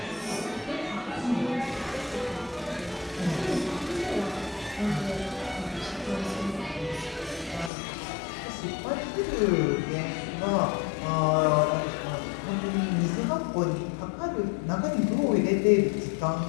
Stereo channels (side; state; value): right; drops out; at 7.7 s